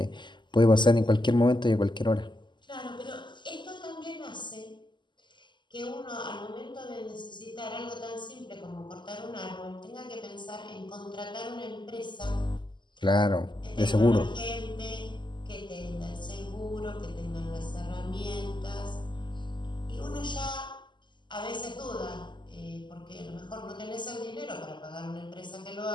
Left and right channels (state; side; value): late; right; 0.22 ms